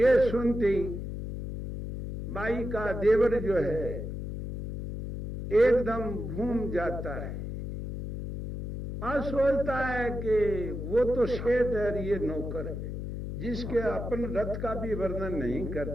सुनते बाई का देवर जो है एकदम घूम जाता है और सोचता है कि वो तो शेठ है, ये नौकर है, जिसके अपन रथ का भी वर्णन नहीं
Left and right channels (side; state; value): left; noise; hum, 4 dB below the sound